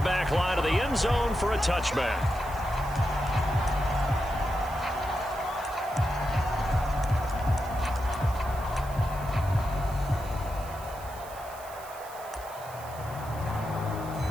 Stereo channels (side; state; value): right; noise; hiss, 18 dB below the sound